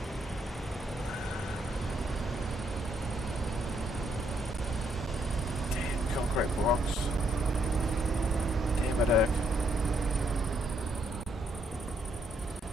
Damn concrete blocks. Damn it, Erk.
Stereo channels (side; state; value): both; normal; correlation 0.74